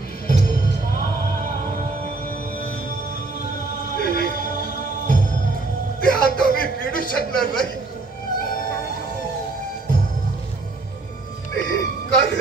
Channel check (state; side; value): quieter; left; 3.5 dB